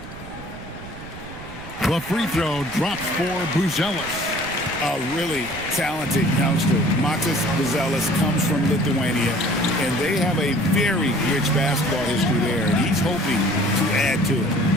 The free throw drops for Buzelis. A really talented youngster. Matas Buzelis comes from Lithuania, and they have a very rich basketball history there, and he's hoping to add to it.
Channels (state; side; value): noise; right; rumble, 16 dB below the sound